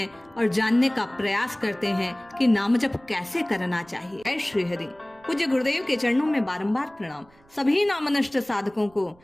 और जानने का प्रयास करते हैं कि नाम जप कैसे करना चाहिए। जय श्री हरि। पूज्य गुरुदेव के चरणों में बारंबार प्रणाम। सभी नामनष्ट साधकों को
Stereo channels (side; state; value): right; noise; rumble, 29 dB below the sound